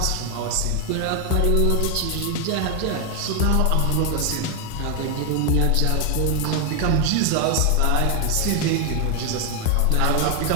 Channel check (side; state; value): both; different; correlation 0.01